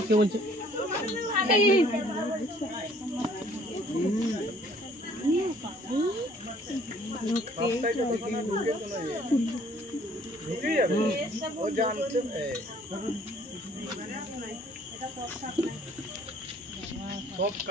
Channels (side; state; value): both; normal; correlation 0.58